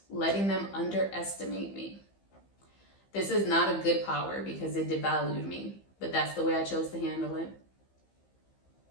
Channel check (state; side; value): late; right; 15 ms